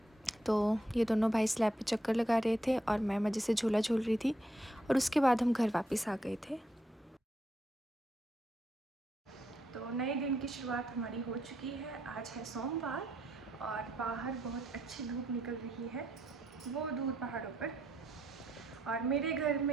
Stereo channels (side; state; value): both; normal; correlation 0.77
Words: तो ये दोनों भाई स्लैब पे चक्कर लगा रहे थे और मैं मज़े से झूला झूल रही थी। और उसके बाद हम घर वापस आ गए थे। तो नए दिन की शुरुआत हमारी हो चुकी है। आज है सोमवार और बाहर बहुत अच्छी धूप निकल रही है, वो दूर पहाड़ों पर। और मेरे घर